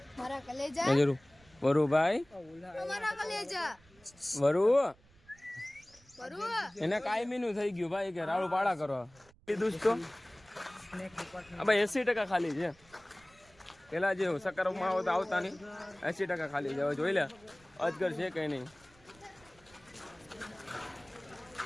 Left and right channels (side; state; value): right; noise; rumble, 28 dB below the sound